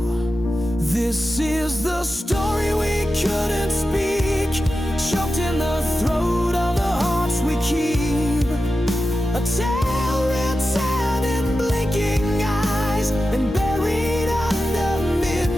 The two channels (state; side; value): normal; both; correlation 0.92